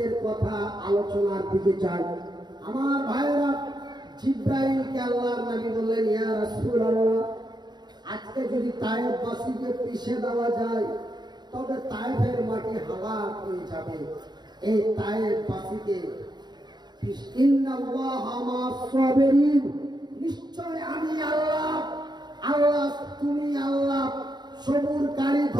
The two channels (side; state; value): left; late; 0.21 ms